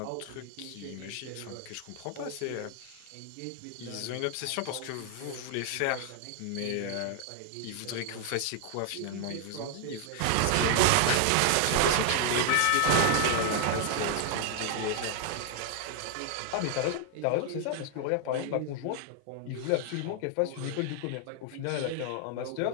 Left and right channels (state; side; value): different; both; correlation 0.00